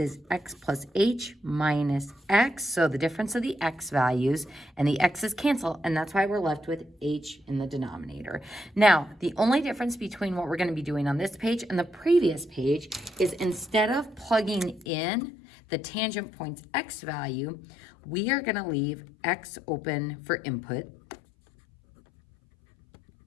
x plus h minus x, so the difference of the x values, and the x's cancel, and that's why we're left with h in the denominator. Now, the only difference between what we're going to be doing on this page and the previous page is instead of plugging in the tangent point's x value, we are going to leave x open for input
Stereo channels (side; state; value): right; drops out; at 14.9 s